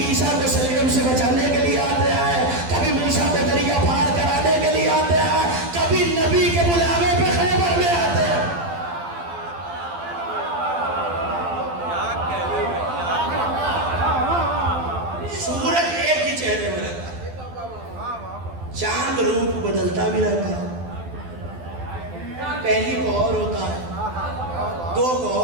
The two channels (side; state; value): left; late; 12 ms